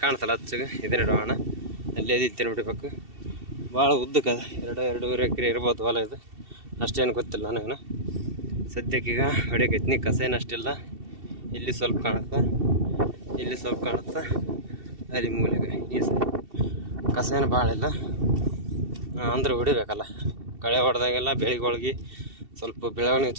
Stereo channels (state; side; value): late; left; 2.7 ms